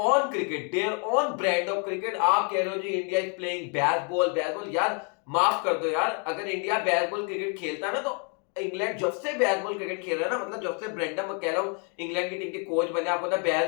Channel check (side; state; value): right; quieter; 39.1 dB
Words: cricket, their own brand of cricket. आप कह रहे हो जी India is playing bat ball, यार माफ कर दो यार, अगर इंडिया बैट बॉल क्रिकेट खेलता ना, तो इंग्लैंड जब से बैट बॉल क्रिकेट खेल रहा है ना, मतलब जब से ब्रेंडन मैकलम इंग्लैंड की टीम के कोच बने, आपको पता है